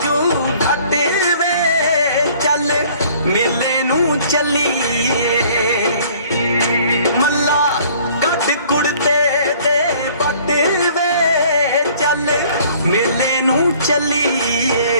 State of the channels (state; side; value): inverted; both; correlation -0.55